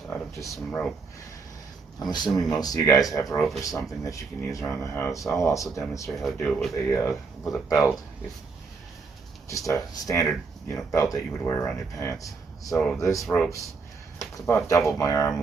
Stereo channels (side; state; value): left; quieter; 4.7 dB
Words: out of just some rope. I'm assuming most of you guys have rope or something that you can use around the house. I'll also demonstrate how to do it with a belt. If just a standard belt that you would wear around your pants. So this rope's, it's about double my